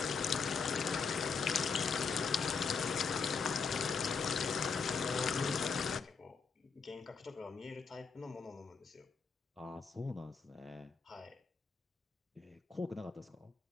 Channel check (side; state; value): right; quieter; 5.4 dB